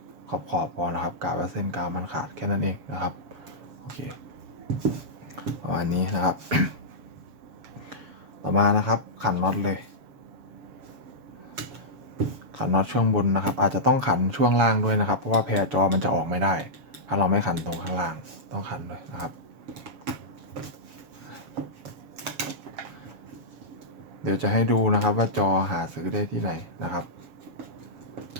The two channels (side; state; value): left; late; 7.4 ms